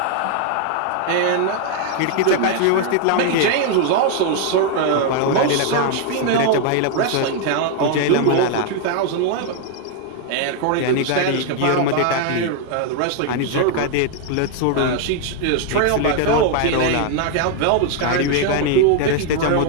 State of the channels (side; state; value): both; different; correlation 0.00